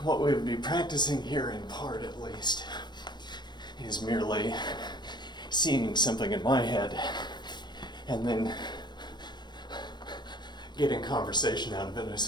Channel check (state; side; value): late; right; 0.21 ms